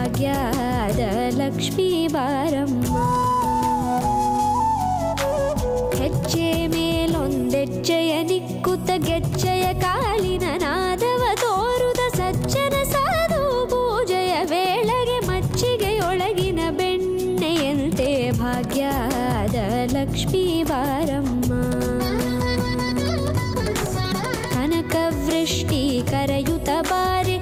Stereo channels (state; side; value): identical; both; correlation 1.00